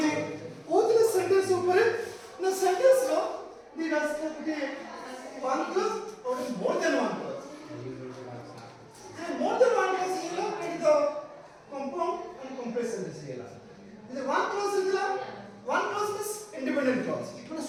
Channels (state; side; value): identical; both; correlation 1.00